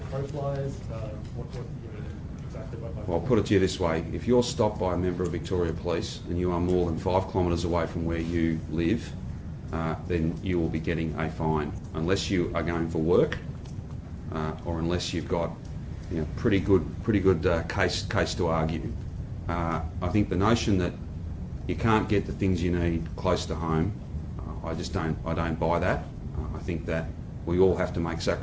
crow flies? What do you mean exactly by 5 kilometres? Well, I'll put it to you this way. If you're stopped by a member of Victoria Police and you are more than 5 kilometres away from where you live, then you will be getting a fine, unless you are going for work, or unless you've got pretty good case to argue. I think the notion that you can't get the things you need close to home, I don't buy that. I think that we all have to make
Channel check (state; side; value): identical; both; correlation 1.00